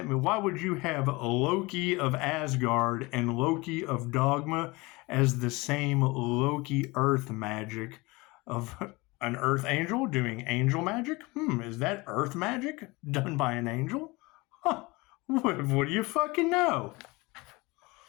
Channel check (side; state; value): right; quieter; 23.8 dB